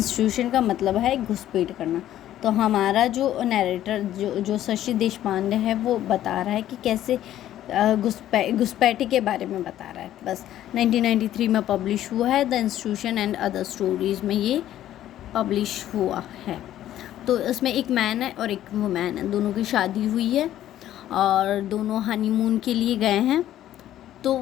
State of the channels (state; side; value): quieter; right; 12.5 dB